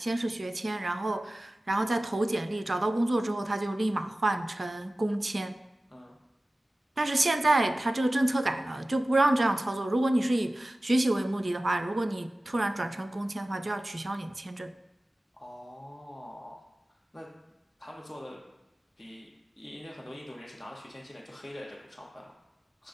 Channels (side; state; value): both; normal; correlation 0.97